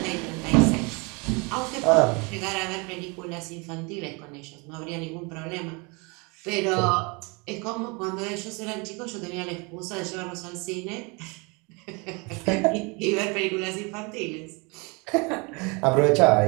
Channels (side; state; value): left; quieter; 29.5 dB